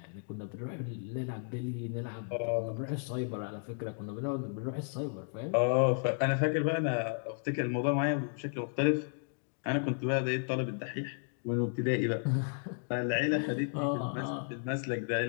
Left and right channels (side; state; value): right; silent; 55 dB below the other